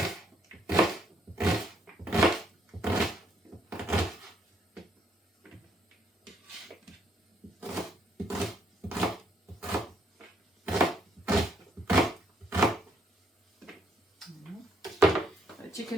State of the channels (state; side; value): normal; both; correlation 0.71